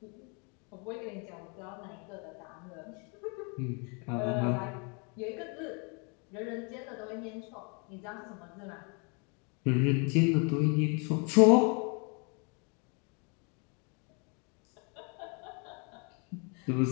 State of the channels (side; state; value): right; quieter; 34.8 dB